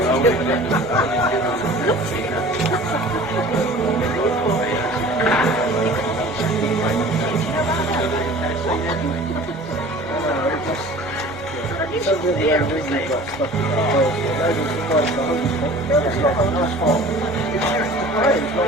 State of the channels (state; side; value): normal; both; correlation 0.44